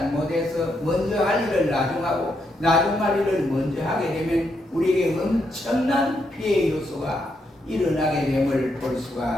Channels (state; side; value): normal; both; correlation 0.79